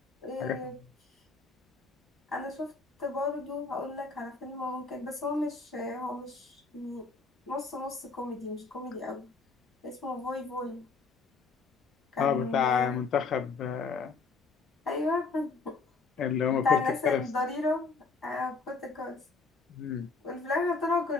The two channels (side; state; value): right; quieter; 4.5 dB